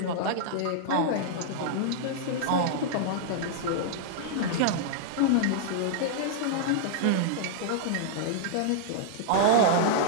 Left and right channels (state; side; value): different; both; correlation -0.01